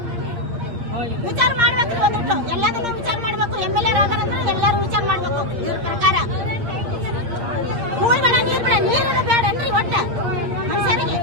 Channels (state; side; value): late; left; 8.6 ms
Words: ವಿಚಾರ ಮಾಡ್ಬೇಕ್ರಿ ಒಂದಿಟ್ಟು ಎಲ್ಲದನ್ನು ವಿಚಾರ ಮಾಡ್ಬೇಕು MLA ರಾದಾರಂದ್ರೆ ಎಲ್ಲಾರು ವಿಚಾರ ಮಾಡ್ಬೇಕು ಇವ್ರ ಪ್ರಕಾರ ಹೂಳ್ಬೇಡ ನೀರ್ ಬೇಡ ನೀರಿನ ಬೇಡನ್ರಿ ಒಟ್ಟ ಮನುಷ್ಯರಿಗೆ